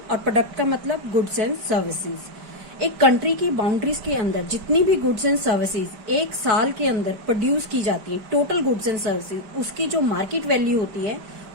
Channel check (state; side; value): late; left; 5.0 ms